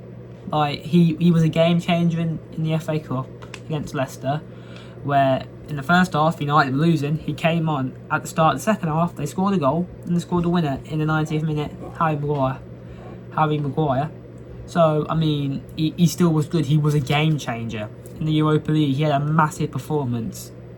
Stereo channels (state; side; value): identical; both; correlation 1.00